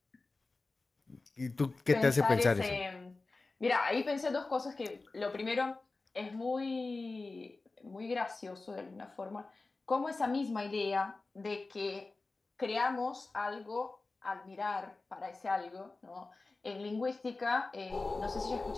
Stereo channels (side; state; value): right; quieter; 3.5 dB